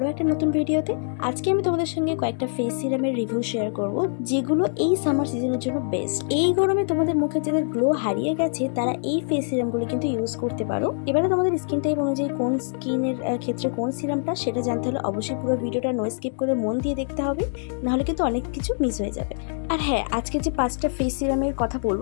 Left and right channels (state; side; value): silent; right; digital silence